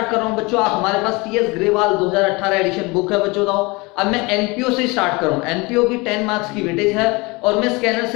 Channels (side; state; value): right; quieter; 25.3 dB